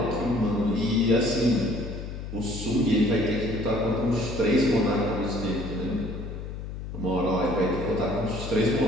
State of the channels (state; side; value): noise; left; hum, 8 dB below the sound